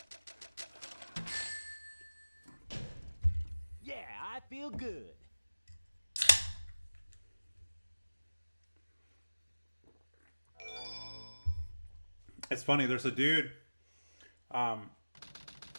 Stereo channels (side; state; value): both; inverted; correlation -0.99